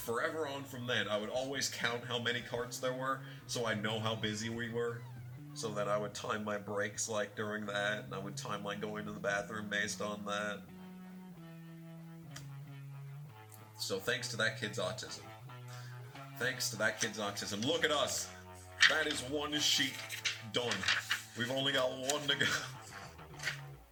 on from then, I would always count how many carts there were, so I know how busy we were, so that I would time my breaks, like, during that, and I would time, like, going to the bathroom based on that. So thanks to that kid's autism. Look at us! That is one sheet done. We've only got one to go.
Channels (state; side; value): identical; both; correlation 1.00